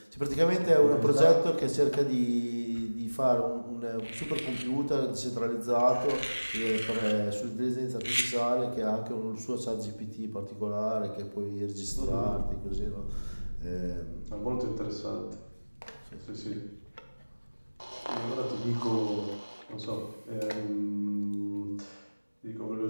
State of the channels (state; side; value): inverted; both; correlation -1.00